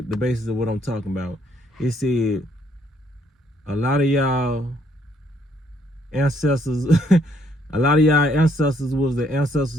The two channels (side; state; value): both; normal; correlation 0.69